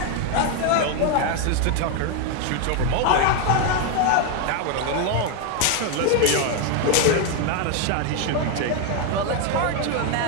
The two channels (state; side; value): different; both; correlation 0.01